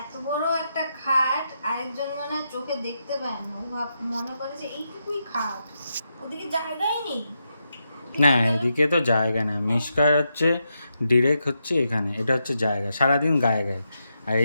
এত বড় একটা খাট আরেকজন মানে চোখে দেখতে পায় না, ও মনে করে যে এইটুকুই খাট, ওদিকে জায়গাই নেই। না এদিকে তো জায়গা না, মিশকার হচ্ছে ডিরেক্ট হচ্ছে এখানে, এটা হচ্ছে জায়গা, সারাদিন গায়ে গায়ে। আর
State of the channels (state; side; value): inverted; both; correlation -0.84